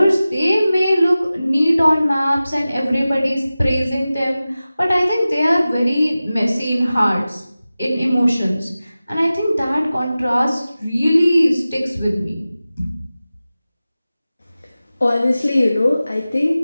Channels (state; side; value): inverted; both; correlation -0.96